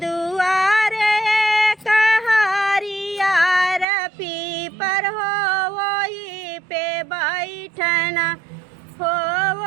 दुआरे कहारिया पीपर हो वही पे बैठना हो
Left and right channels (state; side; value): drops out; left; at 3.9 s